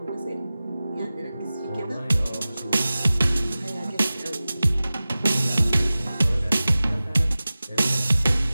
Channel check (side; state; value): both; inverted; correlation -0.97